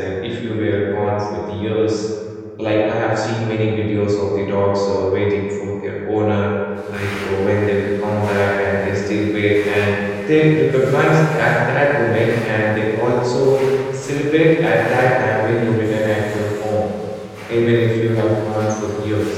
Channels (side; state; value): both; identical; correlation 1.00